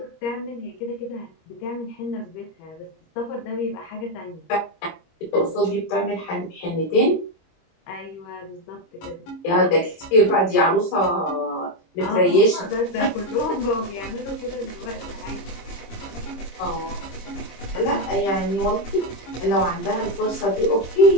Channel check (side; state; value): right; late; 26 ms